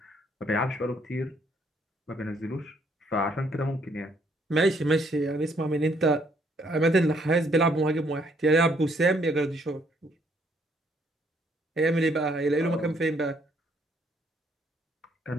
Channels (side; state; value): both; normal; correlation 0.68